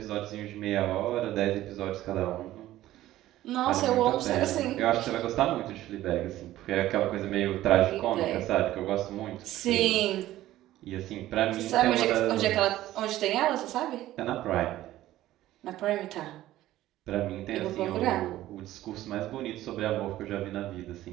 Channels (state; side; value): quieter; left; 14.8 dB